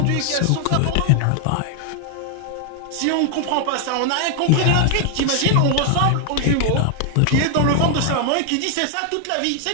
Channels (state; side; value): different; both; correlation 0.00